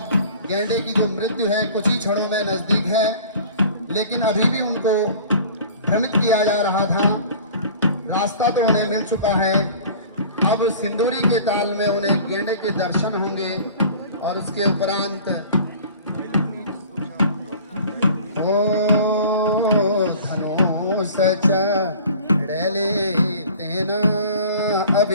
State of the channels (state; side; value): inverted; both; correlation -0.44